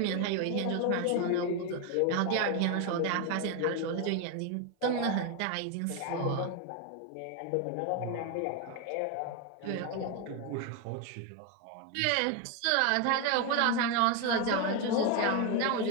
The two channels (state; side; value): different; both; correlation 0.02